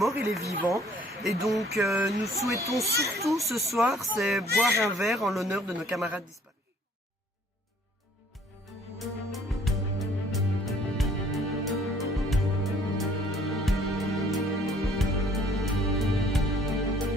et les vivants. Et donc nous souhaitons surtout ce soir, c'est boire un verre en l'honneur de nos camarades disparus.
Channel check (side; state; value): both; normal; correlation 0.58